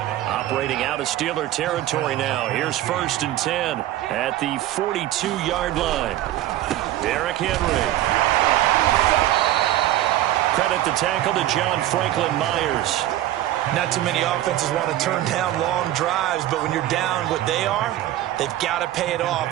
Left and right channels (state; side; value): quieter; left; 14.0 dB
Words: Operating out of Steeler territory now. Here's 1st and 10 at the 42-yard line. Derrick Henry. Credit the tackle to John Franklin Myers. Not too many offenses want to turn down long drives, but when you're down what they are, they've got to pay it